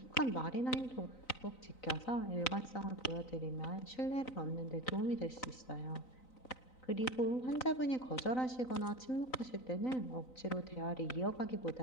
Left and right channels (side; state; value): right; late; 3.9 ms